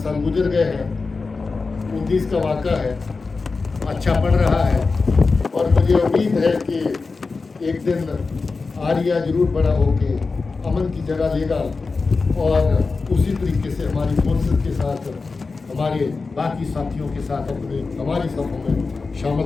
गुजर गए हैं। 19 का वाक़ा है, अच्छा पढ़ रहा है और मुझे उम्मीद है कि एक दिन आर्या जरूर बड़ा होके अमन की जगह लेगा और उसी तरीके से हमारी फोर्सेस के साथ, हमारे बाकी साथियों के साथ हमारी सफों में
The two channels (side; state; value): right; quieter; 4.2 dB